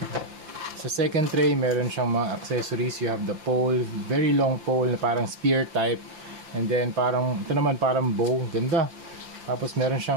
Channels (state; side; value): late; left; 5.8 ms